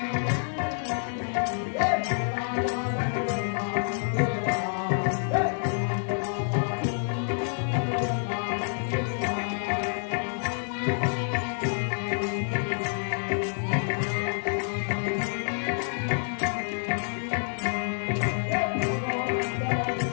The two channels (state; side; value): silent; right; digital silence